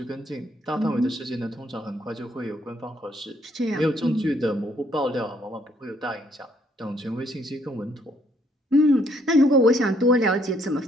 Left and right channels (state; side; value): normal; both; correlation 0.68